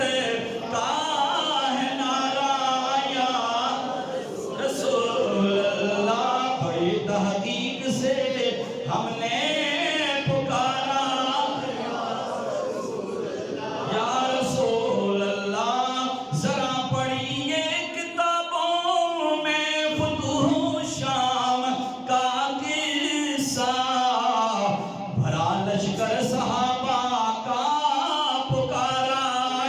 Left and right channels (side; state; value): both; identical; correlation 1.00